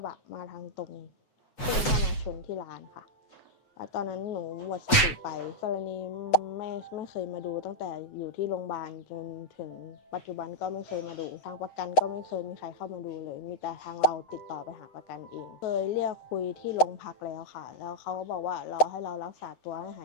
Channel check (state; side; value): late; right; 7.9 ms